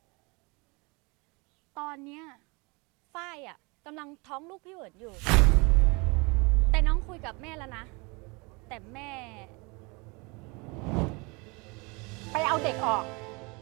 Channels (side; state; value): left; quieter; 28.4 dB